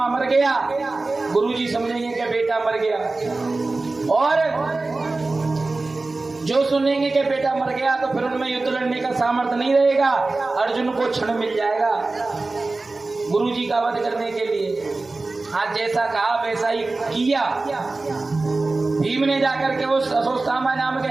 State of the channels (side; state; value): left; quieter; 3.4 dB